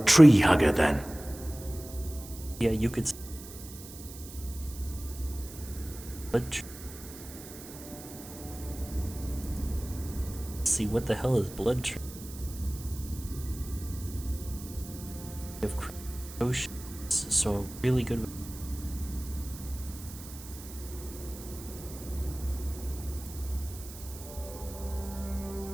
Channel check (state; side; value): noise; right; hiss, 15 dB below the sound